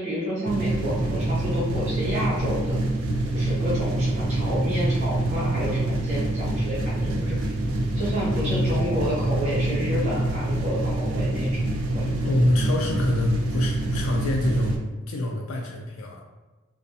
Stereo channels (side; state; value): both; normal; correlation 0.76